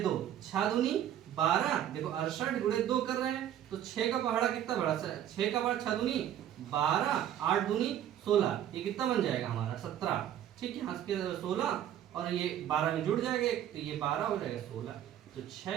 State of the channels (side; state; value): left; quieter; 11.0 dB